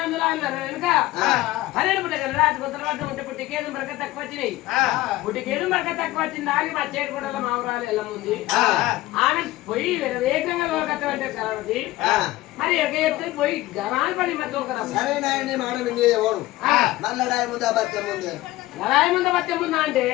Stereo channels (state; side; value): quieter; right; 17.5 dB